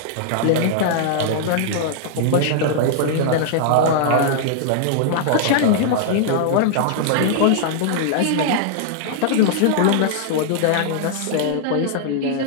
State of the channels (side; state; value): both; different; correlation -0.01